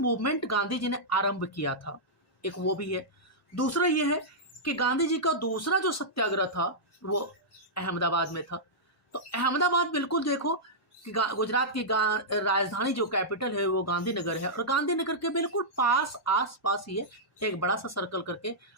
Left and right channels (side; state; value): both; normal; correlation -0.11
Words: गांधी जी ने आरंभ किया था, एक वो भी है। दूसरा ये है कि गांधी जी का दूसरा जो सत्याग्रह था वो अहमदाबाद में था। तो अहमदाबाद बिल्कुल देखो कि गुजरात की राजधानी जो कैपिटल है वो गांधीनगर है, और गांधीनगर के बिल्कुल पास आस पास ही है। एक बड़ा सा सर्कल करके